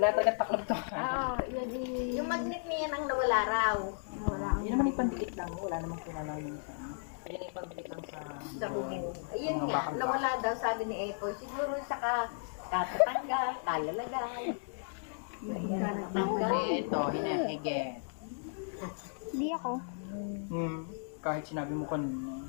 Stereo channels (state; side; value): silent; right; digital silence